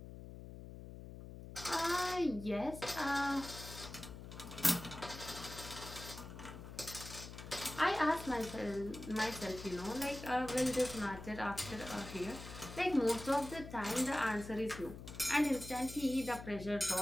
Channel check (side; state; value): left; noise; hum, 12 dB below the sound